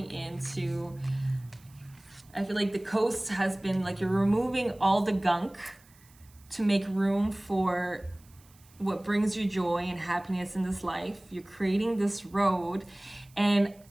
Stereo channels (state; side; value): noise; right; hiss, 28 dB below the sound